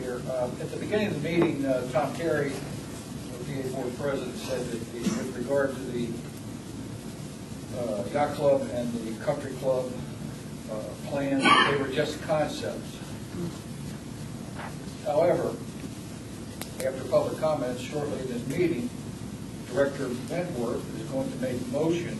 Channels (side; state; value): both; identical; correlation 1.00